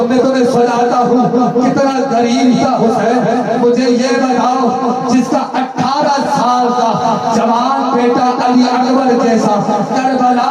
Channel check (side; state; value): both; identical; correlation 1.00